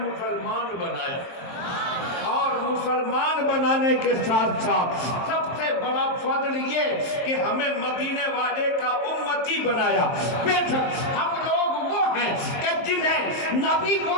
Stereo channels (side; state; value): right; late; 23 ms